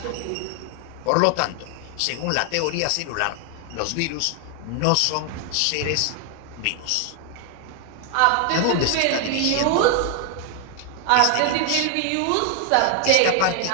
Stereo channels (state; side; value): different; both; correlation 0.00